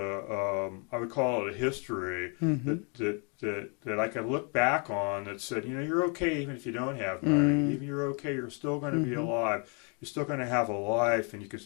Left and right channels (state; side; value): quieter; right; 36.6 dB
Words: would call it a history that I could look back on that said, you're okay even if you don't have money. Even you're okay, you're still going to be alive. You're still going to have a life, and you can